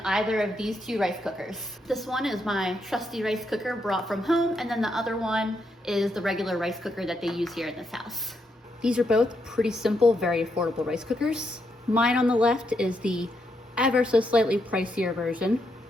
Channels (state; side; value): normal; both; correlation 0.79